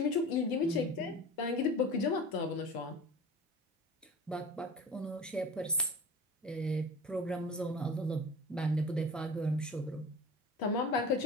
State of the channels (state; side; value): normal; both; correlation 0.36